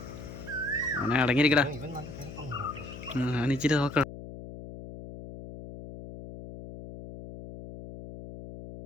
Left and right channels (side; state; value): left; noise; hum, 12 dB below the sound